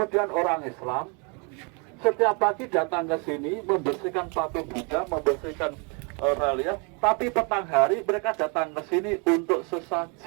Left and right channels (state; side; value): quieter; left; 34.5 dB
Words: orang Islam setiap pagi datang ke sini, membersihkan patung Buddha, membersihkan relief, tapi petang hari mereka datang ke sini untuk